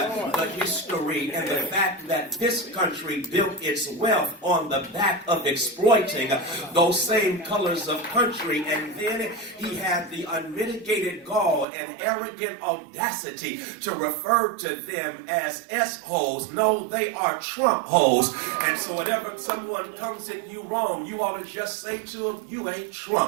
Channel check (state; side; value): drops out; left; at 11.7 s